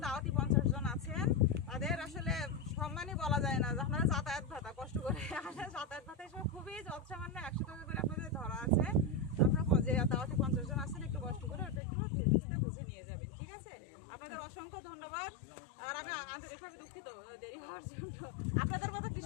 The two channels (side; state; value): right; drops out; at 11.8 s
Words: দাওয়াতি 50 জন আছেন তাদের আসলে সম্মানই বলা যায় না, আপনারা যাতায়াত ভাতা কষ্ট করে যাতায়াত ভাতা এসব খুবই যৎসামান্য 100 টাকা করে আপনাদের ধরা আছে। আপনারা যে দাওয়াতি 50 জন আছেন একটু কষ্ট করে ওটা একটু বুঝে নিয়ে যাবেন। ঠিক আছে, আপনাদের অসংখ্য ধন্যবাদ। আর আমি আন্তরিকভাবে দুঃখিত দেরি হওয়ার জন্য, আপনাদের মতো